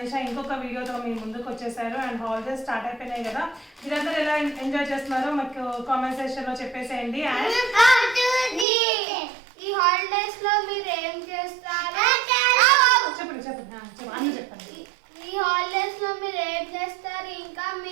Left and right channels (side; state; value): left; drops out; at 8.7 s